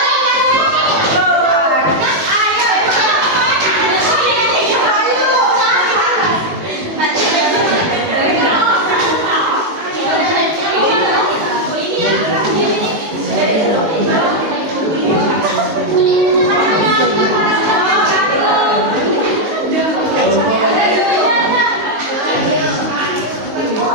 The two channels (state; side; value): late; left; 19 ms